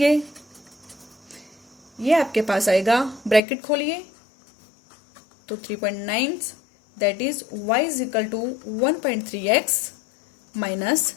ये आपके पास आएगा, ब्रैकेट खोलिए, तो 3.9 that is y is equal to 1.3x minus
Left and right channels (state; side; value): drops out; right; at 3.4 s